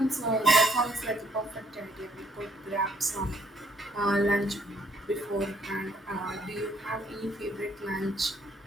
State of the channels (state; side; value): normal; both; correlation 0.66